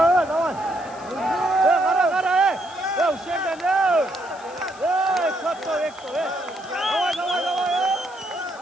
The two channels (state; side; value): noise; left; hiss, 23 dB below the sound